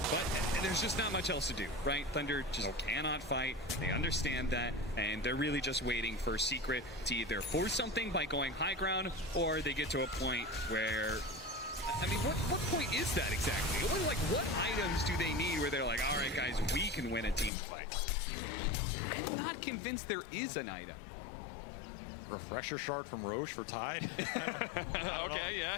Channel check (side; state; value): right; drops out; at 17.5 s